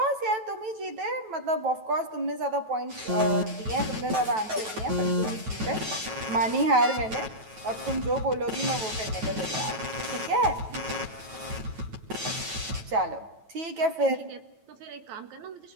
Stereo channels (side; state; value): left; late; 9.2 ms